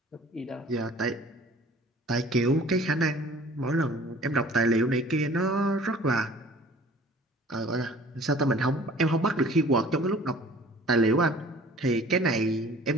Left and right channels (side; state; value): both; normal; correlation 0.49